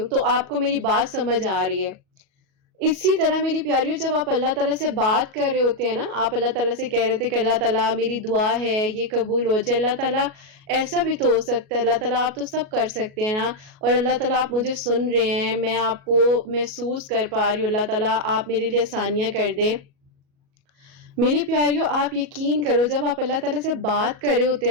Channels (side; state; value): left; late; 37 ms